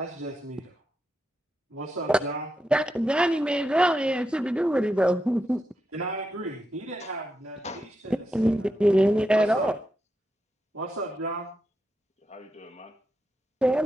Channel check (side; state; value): both; normal; correlation 0.86